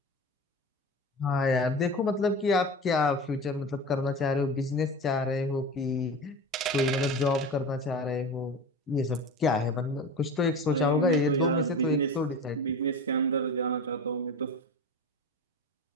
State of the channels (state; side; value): normal; both; correlation 0.30